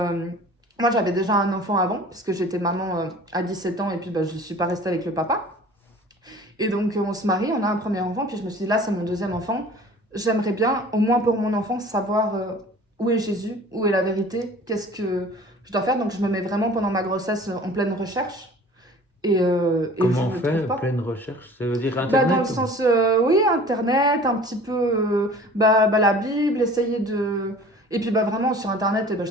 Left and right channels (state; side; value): normal; both; correlation 0.45